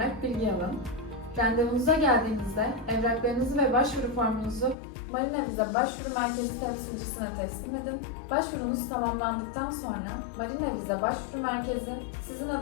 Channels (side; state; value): right; drops out; at 4.8 s